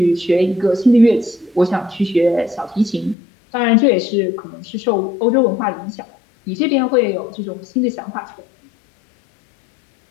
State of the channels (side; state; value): right; drops out; at 3.2 s